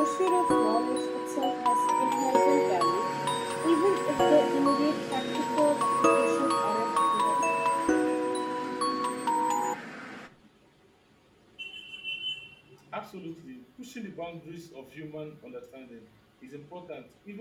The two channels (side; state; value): both; identical; correlation 1.00